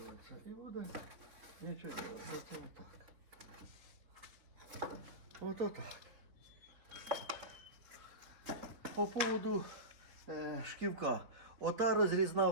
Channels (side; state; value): left; late; 3.9 ms